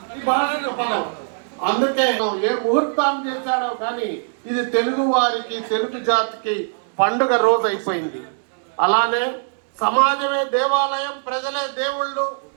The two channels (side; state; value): left; silent; digital silence